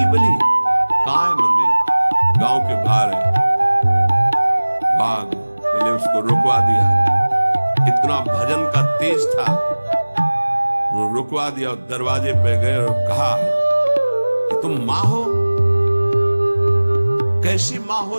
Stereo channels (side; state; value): both; inverted; correlation -1.00